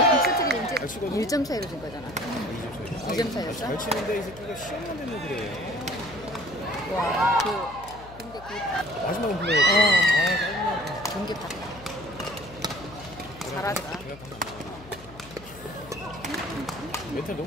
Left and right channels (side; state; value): left; noise; hum, 18 dB below the sound